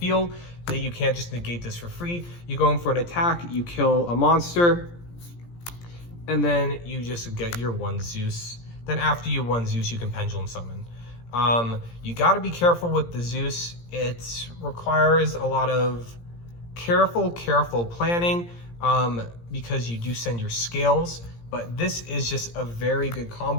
then you can't just negate this for free. You go in for an attack, you kill a monster, and then you just get your 1 Zeus. Then after you 1 Zeus, you can Pendulum Summon. You gotta be careful with the Zeus. It requires a lot of careful planning because you do send your scales, but this is just a very good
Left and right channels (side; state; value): right; late; 17 ms